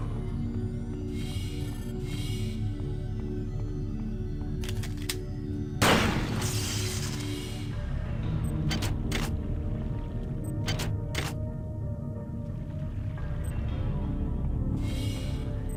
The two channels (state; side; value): identical; both; correlation 1.00